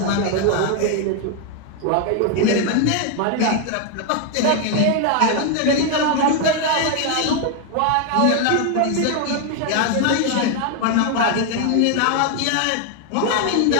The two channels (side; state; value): both; different; correlation 0.01